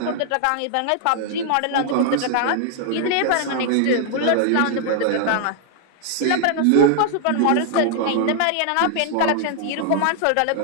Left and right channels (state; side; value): different; both; correlation 0.00